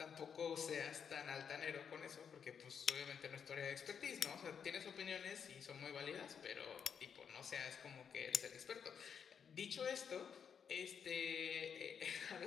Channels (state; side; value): quieter; right; 7.2 dB